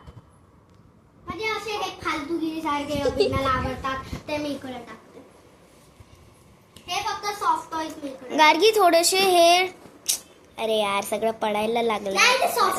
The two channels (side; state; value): both; identical; correlation 1.00